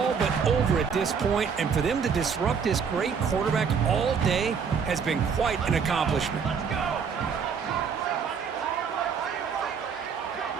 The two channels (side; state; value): left; quieter; 6.4 dB